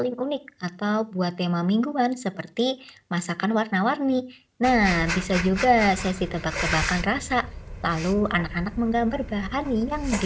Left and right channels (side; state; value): both; identical; correlation 1.00